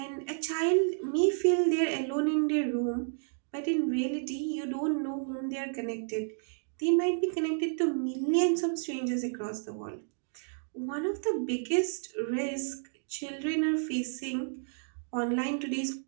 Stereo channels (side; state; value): left; silent; digital silence